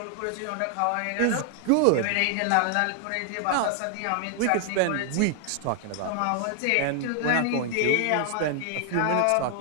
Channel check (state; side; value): different; both; correlation 0.00